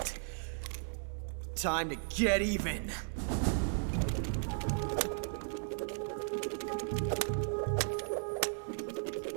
Time to get even.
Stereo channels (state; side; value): silent; left; 54 dB below the other